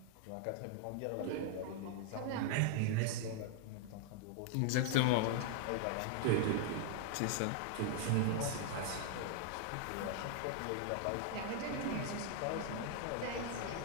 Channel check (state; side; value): different; both; correlation 0.00